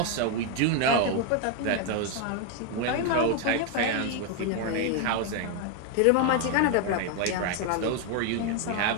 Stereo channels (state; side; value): different; both; correlation 0.01